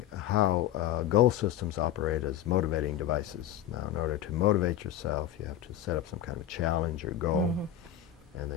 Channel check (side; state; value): right; quieter; 11.1 dB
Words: how goal systems operate as motivating devices. Now, in order to motivate yourself, you have to set up some kind of challenge or goal, and then